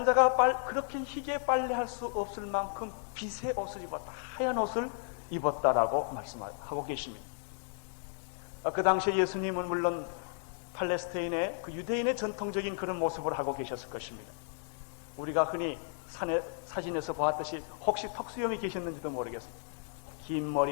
자가 그렇게 희게 빨래할 수 없을 만큼 빛의 옷을 입었다, 하얀 옷을 입었다라고 말씀하고 계십니다. 그 당시에 예수님은 물론 팔레스타인의 그 유대인의 전통적인 그런 모습을 하고 계셨을 것입니다. 우리가 흔히 산에 사진에서 보았듯이 혹시 턱수염이 계셨는지도 모르겠습니다. 긴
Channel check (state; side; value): silent; right; 55 dB below the other